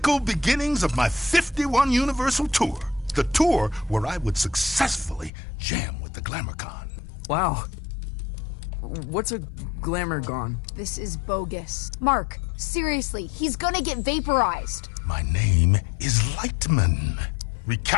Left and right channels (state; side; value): drops out; right; at 5.3 s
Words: beginnings of my 51 Universal Tour. The tour where I would successfully jam with the GlamourCon. Wow. What's a Glamourgon? This is bogus. Mark, seriously, he's gonna get vaporized. My name is Lightman.